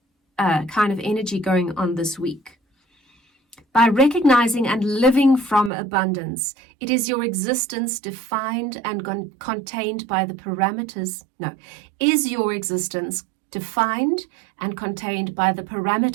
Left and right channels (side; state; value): left; drops out; at 5.7 s